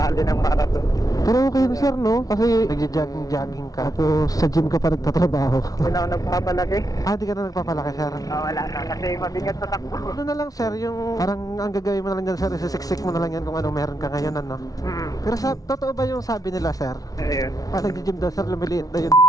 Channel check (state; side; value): late; right; 0.18 ms